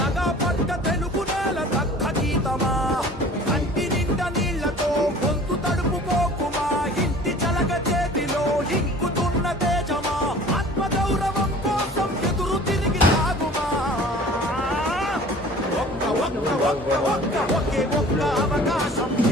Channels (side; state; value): both; normal; correlation 0.46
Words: పట్ట తెలుగు నేల దక్క గీతమా కంటి నిండా నీళ్లతో గొంతు తడుపుకోకుమా ఇంటి చలక చేతిలో ఇంకుతున్న తేజమా ఆత్మగౌరవం కోసం ఎదురు తిరిగి సాగుమా ఒకే ఒక్క అవకాశం